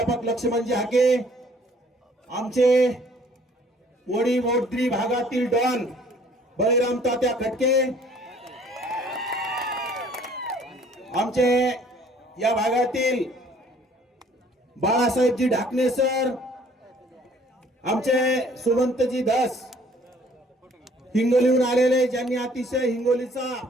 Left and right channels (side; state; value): both; normal; correlation 0.57